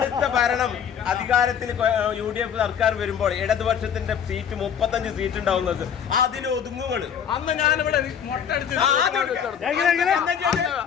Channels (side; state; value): right; quieter; 8.1 dB